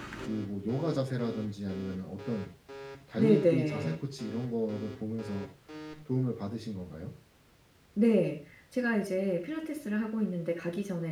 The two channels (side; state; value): both; identical; correlation 1.00